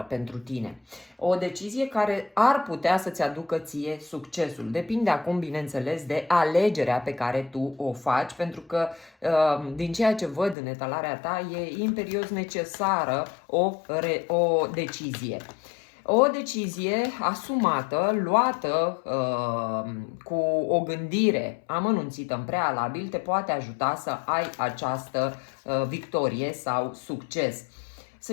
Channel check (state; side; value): drops out; right; at 10.6 s